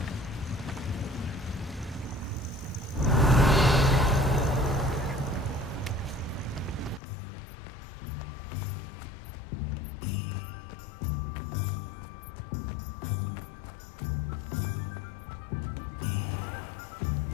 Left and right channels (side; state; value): right; drops out; at 7.0 s